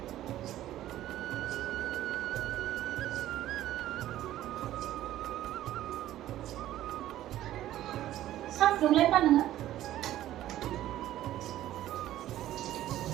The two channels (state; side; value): quieter; left; 13.5 dB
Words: सा फुदुंलाय मा नोङो